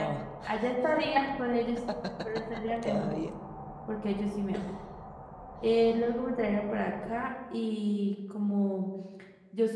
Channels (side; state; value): both; identical; correlation 1.00